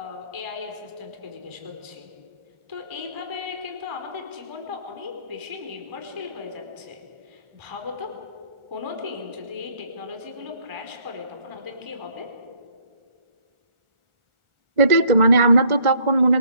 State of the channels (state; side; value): late; left; 1.4 ms